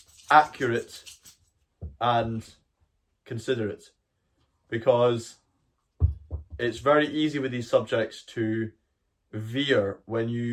accurate, and considerate. Because it's very easy with these subjects to veer when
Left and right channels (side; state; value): both; identical; correlation 1.00